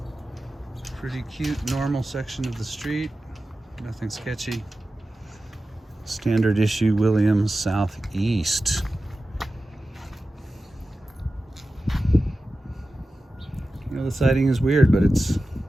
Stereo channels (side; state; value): both; normal; correlation 0.94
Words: Pretty cute, normal section of the street. Nothing sketchy. Standard issue Williams Southeast. You know, the siding is weird, but